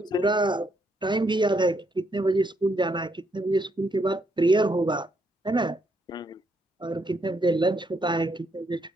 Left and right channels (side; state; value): both; normal; correlation 0.75